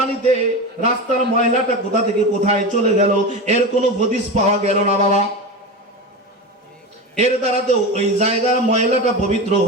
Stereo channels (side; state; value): both; normal; correlation 0.23